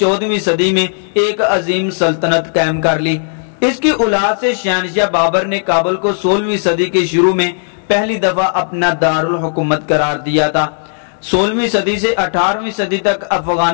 صدی میں ایک عظیم سلطنت قائم کر لی۔ اس کی اولاد سے شہنشاہ بابر نے کابل کو 16ویں صدی کے شروع میں پہلی دفعہ اپنا دارالحکومت قرار دیا تھا۔ 16ویں صدی سے 18ویں صدی تک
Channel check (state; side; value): silent; right; digital silence